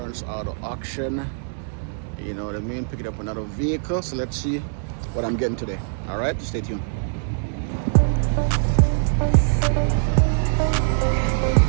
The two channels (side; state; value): left; silent; 58 dB below the other